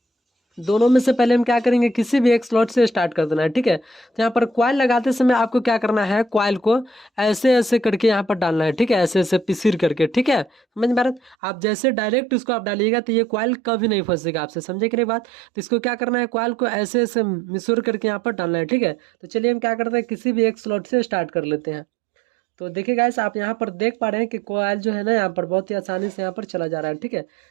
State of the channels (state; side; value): drops out; left; at 11.4 s